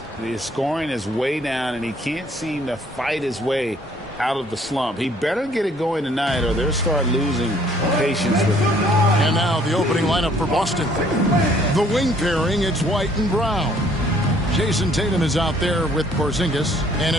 The scoring is way down, and he can't seem to fight his way out of the slump. He better get it going tonight, or they'll start losing patience with him. And now the opening lineup for Boston. The wing pairing, it's White and Brown. Jason Tatum is out there with Porzingis, and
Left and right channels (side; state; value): both; normal; correlation 0.61